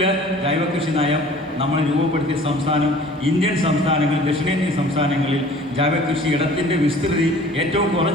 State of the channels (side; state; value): both; normal; correlation 0.48